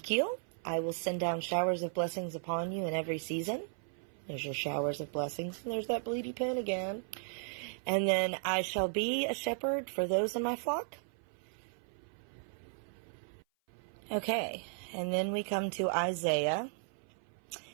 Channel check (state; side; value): silent; left; 54 dB below the other